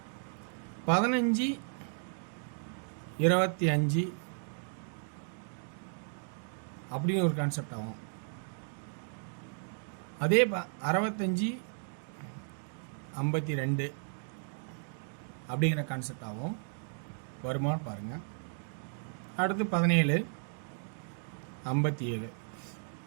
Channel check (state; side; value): silent; left; 55 dB below the other